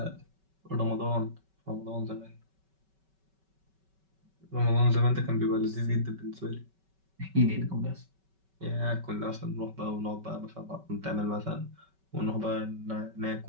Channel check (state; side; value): late; left; 5.3 ms